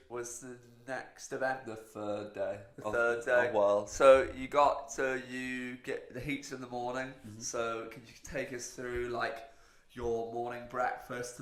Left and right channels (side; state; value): both; identical; correlation 1.00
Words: was the next event. The third day. The third day. Of World. So you get the heats in the morning. So can you take us through like your morning breakfast to